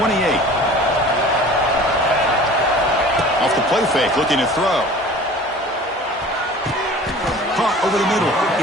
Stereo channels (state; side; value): normal; both; correlation 0.43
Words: Off the play fake, looking to throw. Caught over the middle.